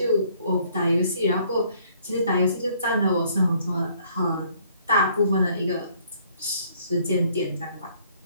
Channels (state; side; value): inverted; both; correlation -0.62